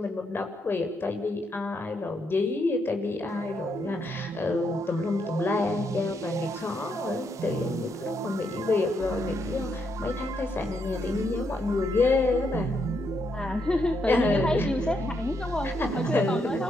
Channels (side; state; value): both; normal; correlation 0.78